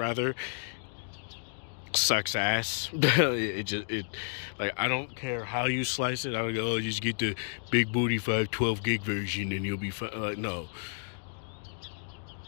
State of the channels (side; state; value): right; silent; digital silence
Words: sucks ass. Like, I don't care how you slice it. I don't go, oh, just get the big booty 512 gig version and you'll be fine. No.